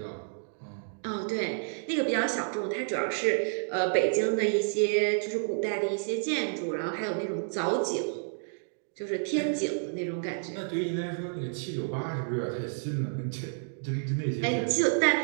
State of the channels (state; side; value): silent; left; digital silence